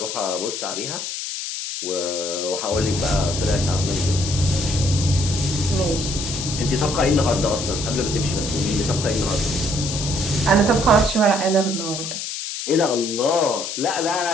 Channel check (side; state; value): left; noise; hiss, 5 dB below the sound